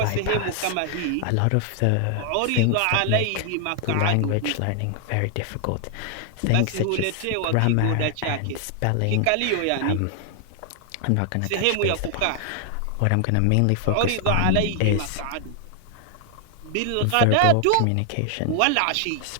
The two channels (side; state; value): both; different; correlation 0.00